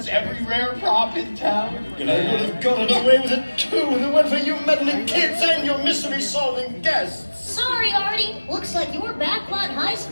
every rare prop in town. And I would have gotten away with it too if it weren't for you meddling kids and your mystery-solving guests. Sorry, Artie. Looks like your backlot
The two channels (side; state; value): both; inverted; correlation -1.00